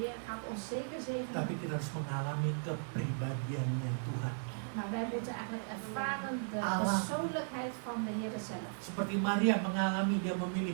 Heer gaat ons zeker zegenen. Tapi kita harus mengalami kepribadiannya Tuhan. Maar wij moeten eigenlijk ervaren de Allah. persoonlijkheid van de Heer zelf. Seperti Maria mengalami, dia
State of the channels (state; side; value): silent; left; digital silence